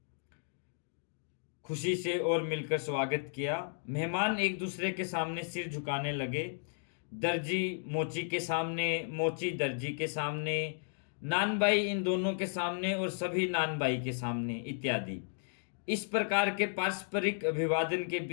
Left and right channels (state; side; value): silent; right; digital silence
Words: खुशी से और मिलकर स्वागत किया। मेहमान एक दूसरे के सामने सिर झुकाने लगे। दर्जी मोची के सामने, मोची दर्जी के सामने, नानबाई इन दोनों के सामने और सभी नानबाई के सामने इत्यादि। इस प्रकार के पारस्परिक अभिवादन के